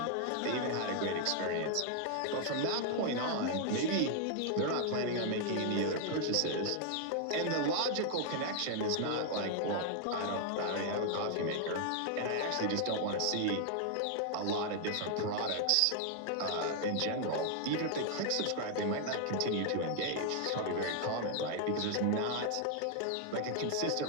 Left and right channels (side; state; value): both; different; correlation 0.00